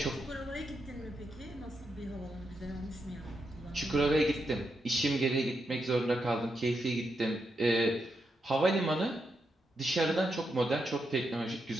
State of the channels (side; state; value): both; normal; correlation 0.83